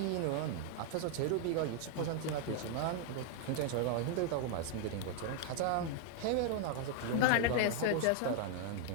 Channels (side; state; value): both; different; correlation 0.00